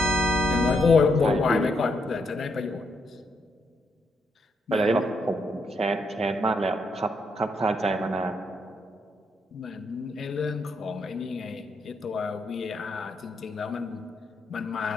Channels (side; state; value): both; normal; correlation 0.77